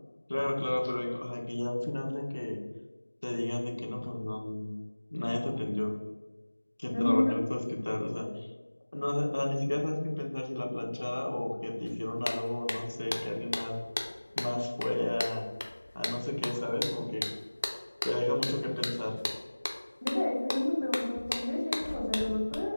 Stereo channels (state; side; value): inverted; both; correlation -1.00